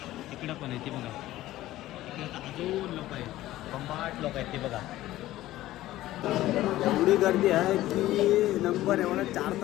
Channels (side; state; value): right; quieter; 15.4 dB